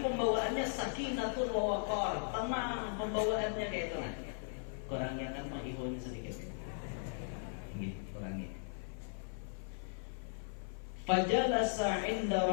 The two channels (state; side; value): silent; right; 53 dB below the other